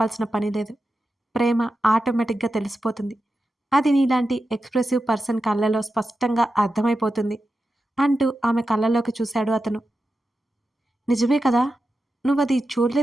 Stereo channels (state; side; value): normal; both; correlation 0.90